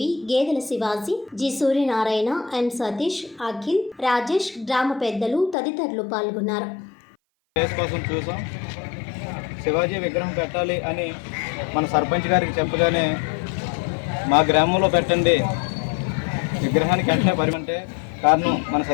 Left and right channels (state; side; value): drops out; right; at 5.6 s